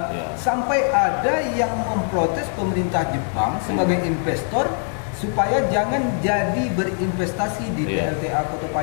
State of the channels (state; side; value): silent; right; 56 dB below the other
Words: sampai ada yang memprotes pemerintah Jepang sebagai investor supaya jangan jadi berinvestasi di PLTA Kota